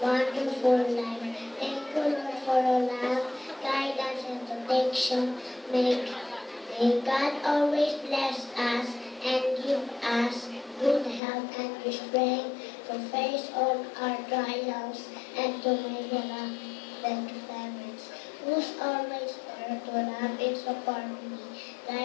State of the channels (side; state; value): right; drops out; at 11.2 s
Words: wonderful life. Thank you, Lord, for your love, guidance, and protection. May God always bless us and give us good health and strength to face all our trials, and to my beloved parents, who's always there to love and support me,